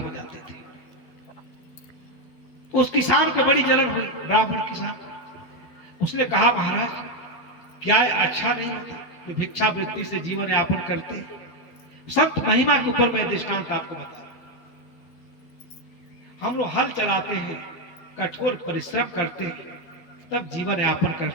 जाते थे। उस किसान को बड़ी जलन हुई, ब्राह्मण किसान। उसने कहा, महाराज क्या अच्छा नहीं होता कि भिक्षावृत्ति से जीवन यापन करते? संत महिमा के ऊपर मैं दृष्टांत आपको बता रहा हूं। हम लोग हल चलाते हैं, कठोर परिश्रम करते हैं, तब जीवन यापन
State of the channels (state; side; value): late; right; 12 ms